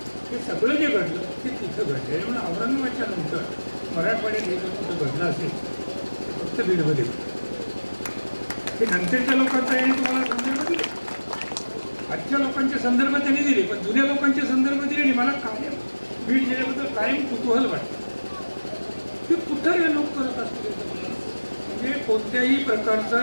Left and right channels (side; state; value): both; inverted; correlation -1.00